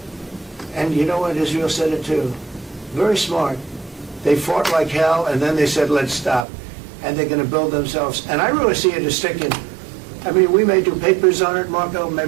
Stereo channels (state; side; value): drops out; left; at 6.5 s